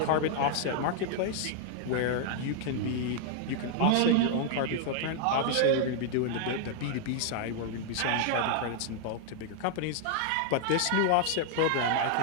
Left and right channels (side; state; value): both; different; correlation -0.01